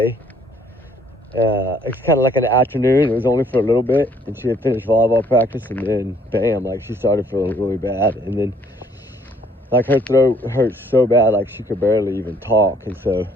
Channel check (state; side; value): normal; both; correlation 0.63